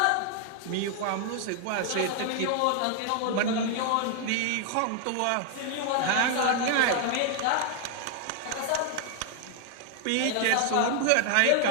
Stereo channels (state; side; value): different; both; correlation 0.00